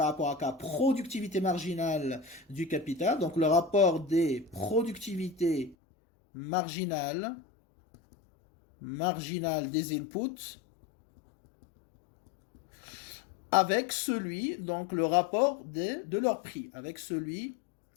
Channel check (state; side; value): drops out; right; at 5.8 s